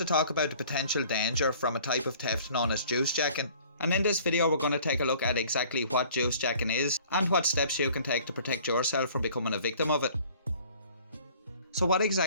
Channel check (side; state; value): both; inverted; correlation -0.52